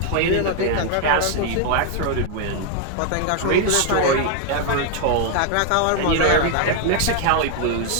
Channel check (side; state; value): both; different; correlation 0.00